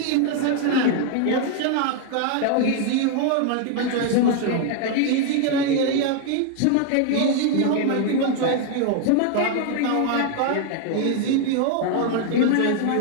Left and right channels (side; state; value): both; different; correlation 0.00